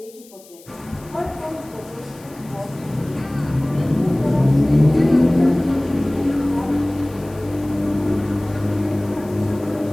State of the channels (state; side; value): noise; left; hiss, 24 dB below the sound